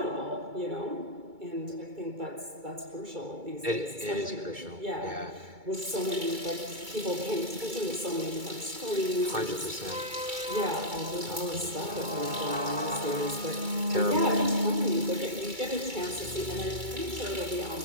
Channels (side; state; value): left; late; 2.2 ms